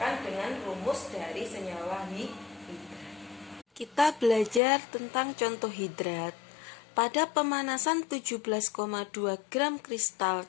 dengan rumus dari senyawa hidrat. Kita belajar tentang contoh hidrat. Pada pemanasan 17,2 gram kristal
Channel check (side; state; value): right; drops out; at 4.6 s